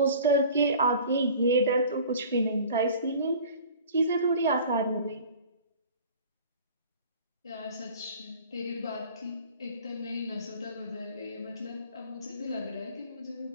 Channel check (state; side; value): inverted; both; correlation -0.44